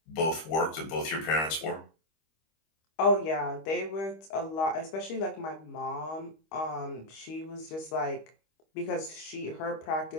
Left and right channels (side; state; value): right; late; 25 ms